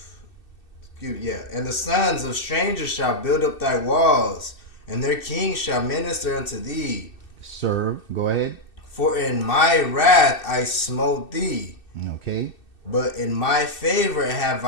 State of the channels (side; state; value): right; late; 2.6 ms